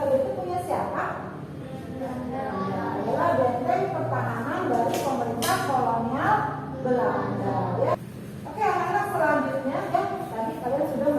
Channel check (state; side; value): identical; both; correlation 1.00